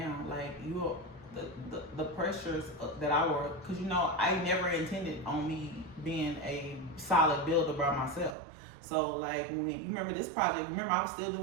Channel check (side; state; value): left; drops out; at 8.3 s